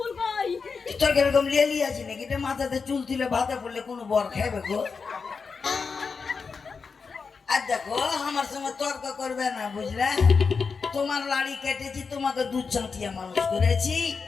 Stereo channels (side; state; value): right; quieter; 5.1 dB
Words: কই? তোর কিরকম লেলি আছে নাকি? এটা মাথাতে চুল তুলে ভাতে পড়লে কোনো বর খাইবে গো? আর দেখো আমার সঙ্গে তর্ক করবে না, বুঝলে? তোমার লাড়ি কেটেছি, তোমাকে দুধ চাঁটিয়ে মানুষ করেছি,